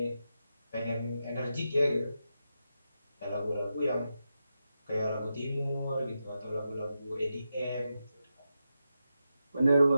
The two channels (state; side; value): inverted; both; correlation -0.88